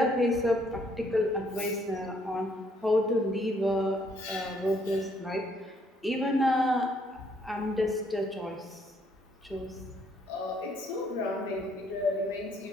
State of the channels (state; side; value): normal; both; correlation 0.68